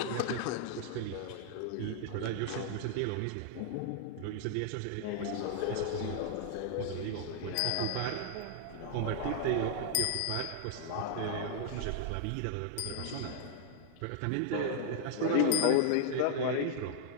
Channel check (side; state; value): both; different; correlation 0.00